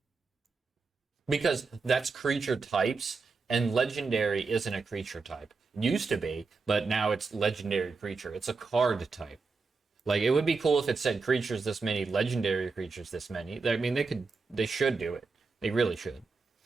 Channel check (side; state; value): left; quieter; 4.4 dB